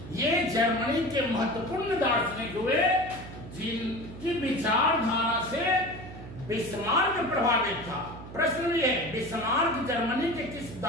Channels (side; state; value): right; noise; hum, 13 dB below the sound